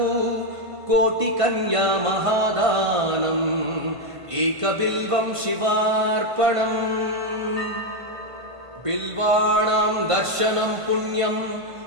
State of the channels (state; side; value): late; left; 1.5 ms